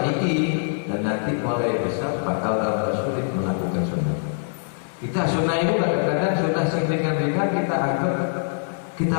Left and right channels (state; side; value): silent; right; 60 dB below the other